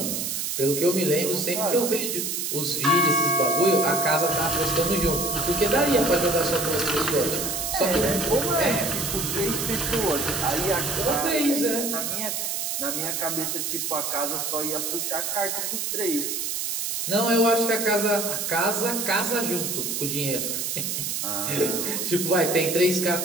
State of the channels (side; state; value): right; noise; hiss, 2 dB below the sound